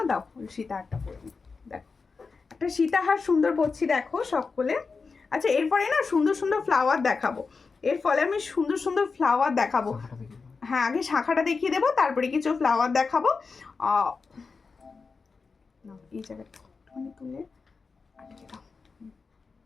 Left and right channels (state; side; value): quieter; right; 4.7 dB